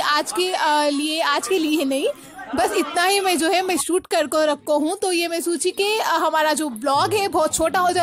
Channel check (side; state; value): both; identical; correlation 1.00